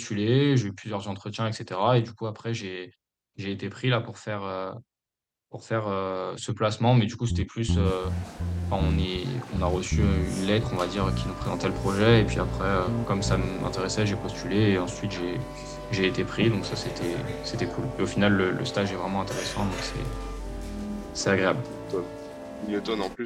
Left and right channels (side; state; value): both; identical; correlation 1.00